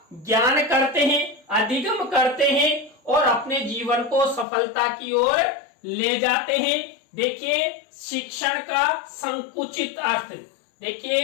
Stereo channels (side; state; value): right; drops out; at 4.5 s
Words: ज्ञान करते हैं, अधिगम करते हैं और अपने जीवन को सफलता की ओर ले जाते हैं। देखिए, शिक्षण का संकुचित अर्थ,